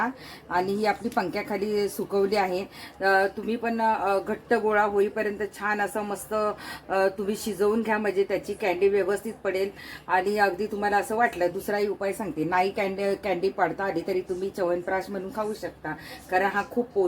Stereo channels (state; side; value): identical; both; correlation 1.00